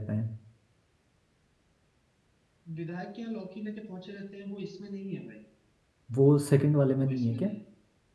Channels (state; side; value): identical; both; correlation 1.00